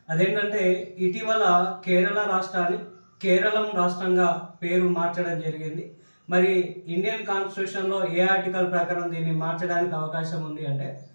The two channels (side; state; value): both; inverted; correlation -1.00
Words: అదేంటంటే ఇటీవల కేరళ రాష్ట్రాన్ని కేరళం రాష్ట్రంగా పేరు మార్చడం జరిగింది. మరి ఇండియన్ కాన్స్టిట్యూషన్లో ఏ ఆర్టికల్ ప్రకారం దీన్ని మార్చడానికి అవకాశం ఉంది అంటే